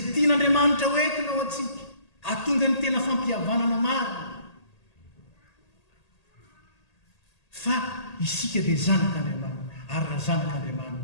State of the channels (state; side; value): late; right; 1.8 ms